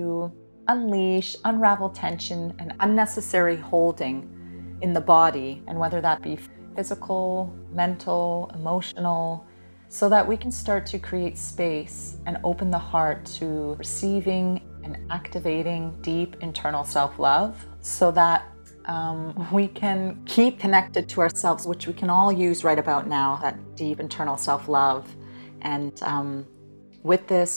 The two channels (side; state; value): both; inverted; correlation -1.00